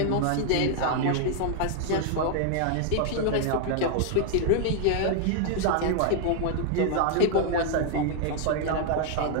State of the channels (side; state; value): both; different; correlation -0.01